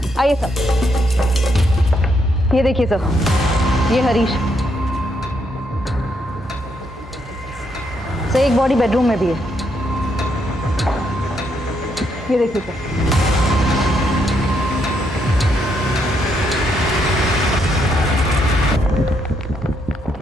आइए सर, ये देखिए सर, ये हरीश। सर एक बॉडी बेडरूम में भी है, ये देखिए सर।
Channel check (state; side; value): normal; both; correlation 0.76